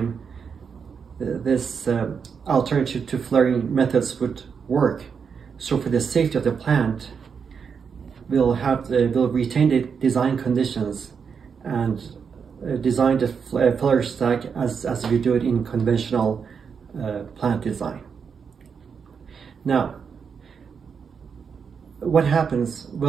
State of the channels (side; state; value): left; quieter; 6.3 dB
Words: this alternative to flaring methods would work. So for the safety of the plant, we'll retain the design conditions and design the flare stack as we do it in conventional plant design. Now, what happens?